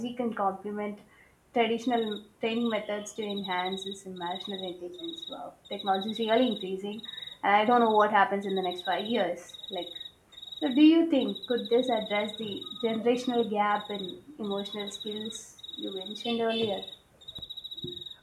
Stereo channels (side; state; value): both; identical; correlation 1.00